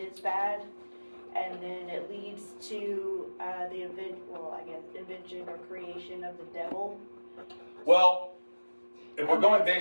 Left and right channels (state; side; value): inverted; both; correlation -1.00